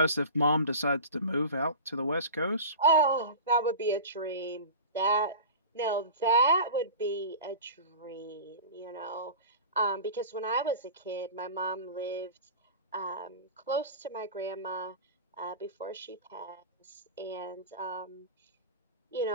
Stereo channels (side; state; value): both; inverted; correlation -0.33